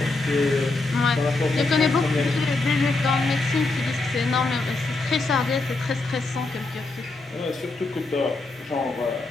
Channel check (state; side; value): quieter; right; 3.3 dB